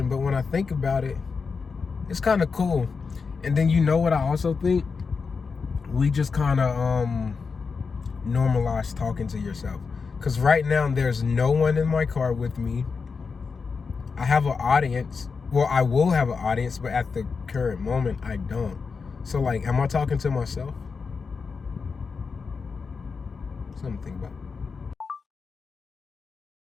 But when I think about it, it's kind of cool. And then you know what I also think? We just kind of normalize talking to yourself. Because right now there's no one in my car with me. I have an audience. Well, I will have an audience, but at the current moment, I don't. So like, am I talking to myself? Something to think about.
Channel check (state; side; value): quieter; right; 5.1 dB